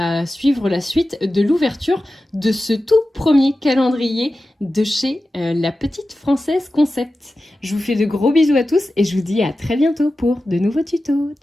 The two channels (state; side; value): normal; both; correlation 0.94